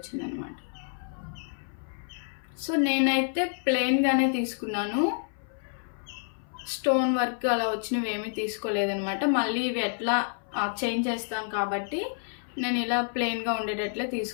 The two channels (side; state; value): right; silent; 59 dB below the other